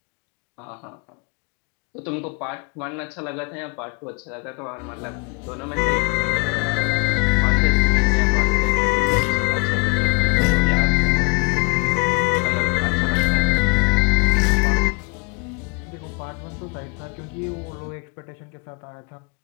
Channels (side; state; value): right; quieter; 29.2 dB